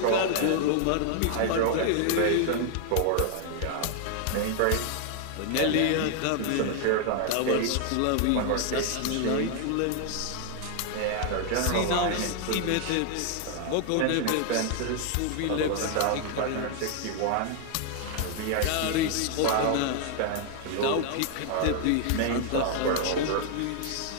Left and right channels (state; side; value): different; both; correlation 0.00